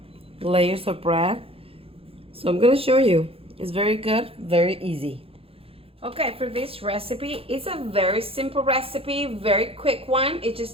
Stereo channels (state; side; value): late; left; 0.27 ms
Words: Layers of bread. So I'm going to show you. It's very good, very easy. Okay, for this recipe, it's a very simple recipe, very quick one. It